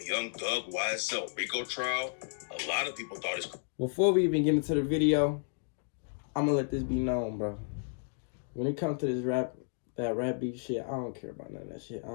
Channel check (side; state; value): right; silent; digital silence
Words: Young Thug YSL Rico trial, a lot of people thought it's... Before we even get into the video, I'm going to let this be known, bro. When it comes to this rap beef shit, I don't care about none of that shit. I